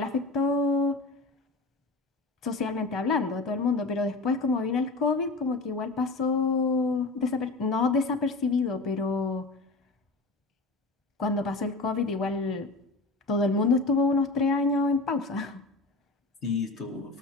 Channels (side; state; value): right; quieter; 3.3 dB